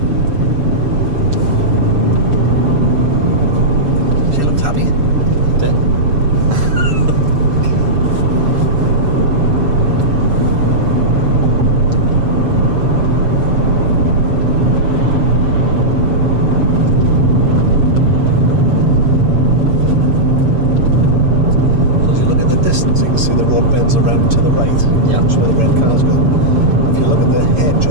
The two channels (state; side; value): late; left; 6.8 ms